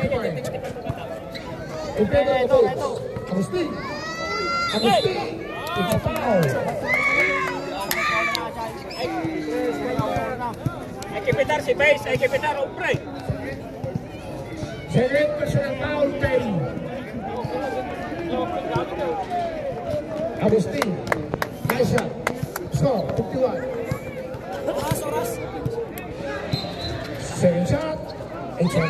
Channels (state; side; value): identical; both; correlation 1.00